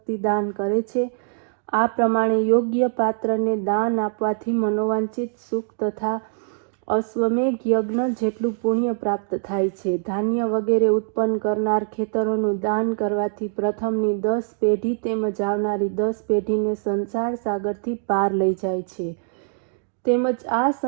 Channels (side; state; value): left; silent; digital silence